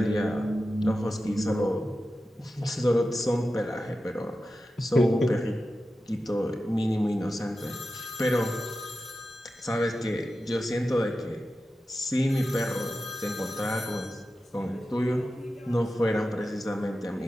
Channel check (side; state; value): both; normal; correlation 0.92